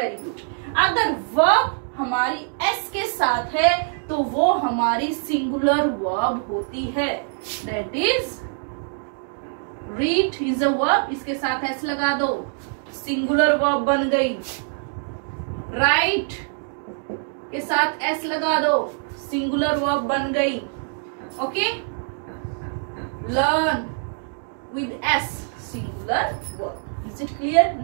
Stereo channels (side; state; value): left; silent; 63 dB below the other